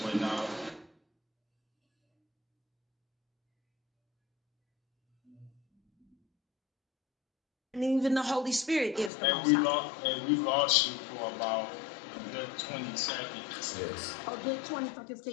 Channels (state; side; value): drops out; right; at 9.1 s